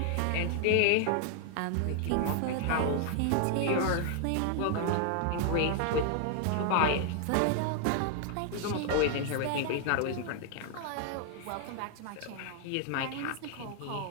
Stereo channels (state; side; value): different; both; correlation 0.00